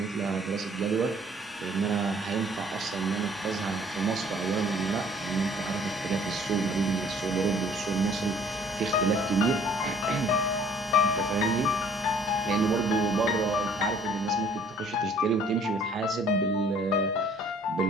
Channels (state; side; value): normal; both; correlation 0.57